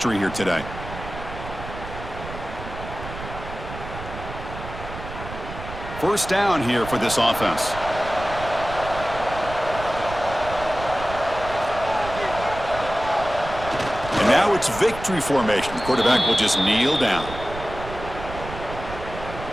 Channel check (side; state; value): right; noise; rumble, 11 dB below the sound